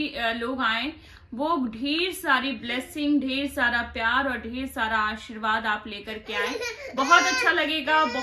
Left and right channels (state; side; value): identical; both; correlation 1.00